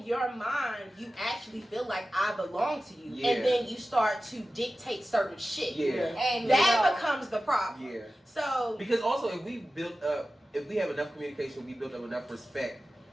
your mind you actually feel like I belong to you, Yeah. and then you start to dictate certain shit. Yeah. And That becomes the problem. Yeah. So Because also, if we have enough communication, we build up enough respect,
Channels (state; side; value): normal; both; correlation 0.95